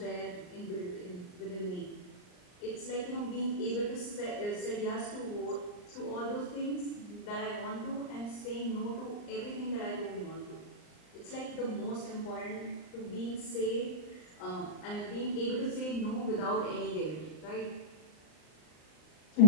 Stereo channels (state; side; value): late; right; 39 ms